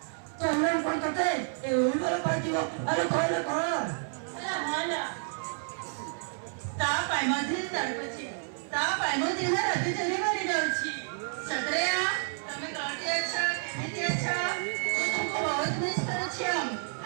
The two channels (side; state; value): left; silent; 57 dB below the other